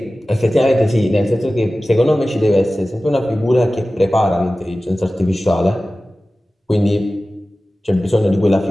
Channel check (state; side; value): normal; both; correlation 0.96